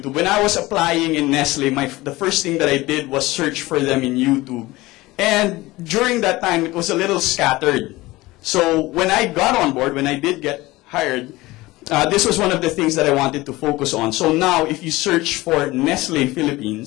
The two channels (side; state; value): right; quieter; 19.6 dB